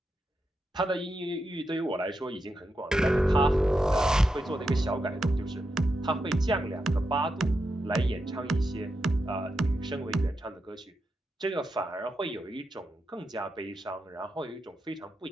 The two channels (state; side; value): normal; both; correlation 0.86